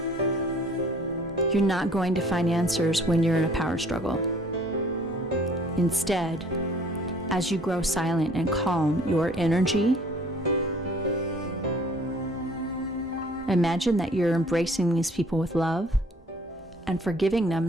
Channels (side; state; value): both; normal; correlation 0.55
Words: You're not going to find answers when you're in a power struggle. Instead, as you grow silent and calm your energy, imagine that you're embracing these people with love and forgiving them